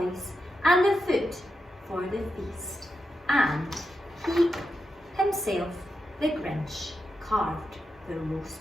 and the food for the feast, and he himself, the Grinch, carved the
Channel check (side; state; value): both; normal; correlation 0.88